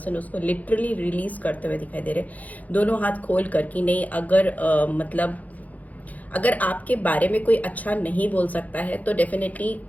उसको लिटरली रिलीज करते हुए दिखाई दे रहे हैं, दोनों हाथ खोल कर कि नहीं, अगर मतलब अगर आपके बारे में कोई अच्छा नहीं बोल सकता है तो डेफिनेटली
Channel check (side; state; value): right; late; 0.077 ms